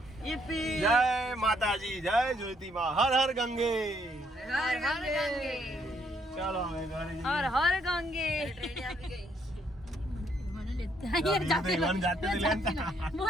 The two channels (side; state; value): both; normal; correlation 0.70